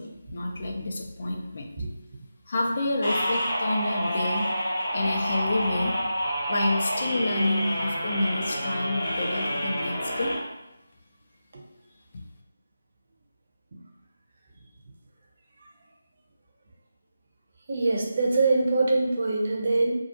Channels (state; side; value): inverted; both; correlation -0.89